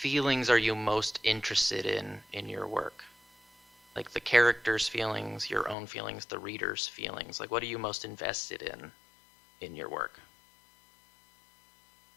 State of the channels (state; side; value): drops out; right; at 5.8 s